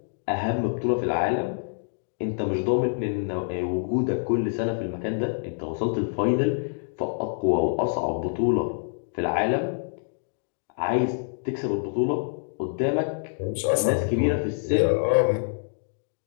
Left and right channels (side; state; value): right; silent; digital silence